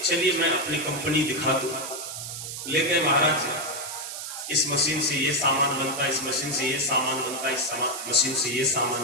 चलिए मैं अपनी कंपनी दिखा दूं। ले गए महाराज, इस मशीन से ये सामान बनता है, इस मशीन से ये सामान बनता है, इस मशीन से ये सामान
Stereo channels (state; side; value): noise; right; hiss, 7 dB below the sound